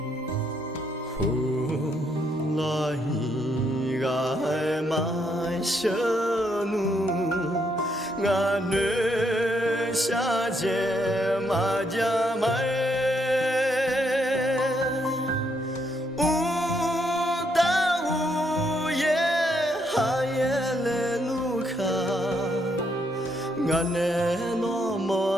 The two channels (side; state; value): both; normal; correlation 0.75